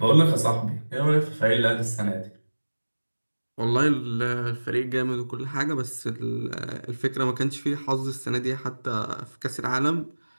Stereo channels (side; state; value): both; inverted; correlation -1.00